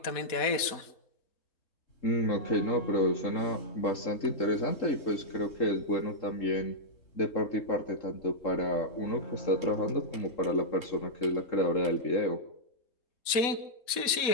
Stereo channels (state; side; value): late; right; 4.1 ms